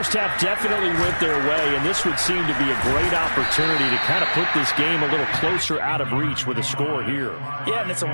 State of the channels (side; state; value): both; inverted; correlation -1.00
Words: half definitely went their way, and this would seem to be a great opportunity to kind of put this game a little closer out of reach with a score here. Yeah, and it's